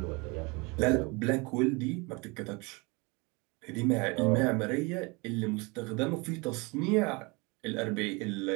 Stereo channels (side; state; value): left; quieter; 27.7 dB